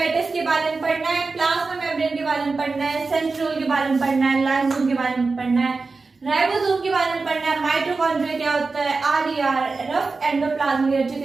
के बारे में पढ़ना है, प्लाज्मा मेम्ब्रेन के बारे में पढ़ना है, सेंट्रियोल के बारे में पढ़ना है, लाइसोसोम के बारे में पढ़ना है, राइबोसोम के बारे में पढ़ना है, माइटोकॉन्ड्रिया क्या होता है, आरईआर, रफ एंडोप्लाज्मिक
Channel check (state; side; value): quieter; left; 4.0 dB